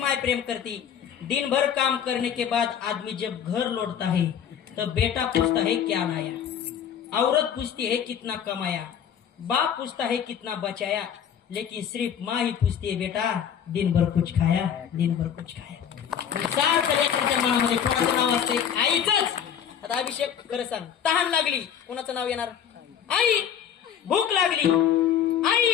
प्रेम करती. दिन भर काम करने के बाद आदमी जब घर लौटता है तो बेटा पूछता है क्या लाया, औरत पूछती है कितना कमाया, बाप पूछता है कितना बचाया, लेकिन सिर्फ माँ ही पूछती है बेटा दिन भर कुछ खाया, दिन भर कुछ खाया. सारखं लेकराच्या मनामध्ये कोणाचं नाव असते? आईचंच. आता अभिषेक खरं सांग, तहान लागली कोणाचं नाव येणार? आई. भूक लागली आई.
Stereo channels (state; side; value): quieter; right; 8.6 dB